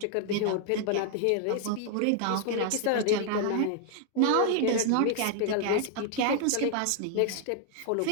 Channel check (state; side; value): different; both; correlation 0.00